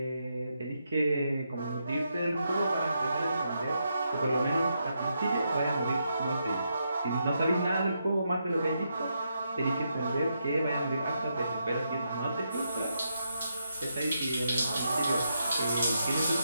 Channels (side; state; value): both; inverted; correlation -0.82